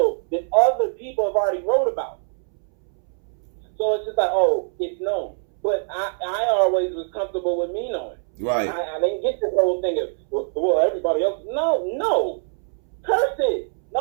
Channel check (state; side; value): silent; left; 63 dB below the other